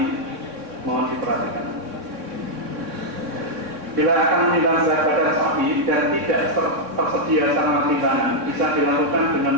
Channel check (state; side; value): late; left; 3.6 ms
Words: mohon diperhatikan. Bila akan menimbang berat badan sapi dan tidak tersedia sarana timbangan, bisa dilakukan dengan